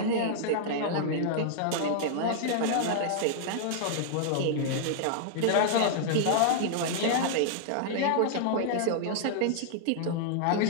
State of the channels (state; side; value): different; both; correlation -0.01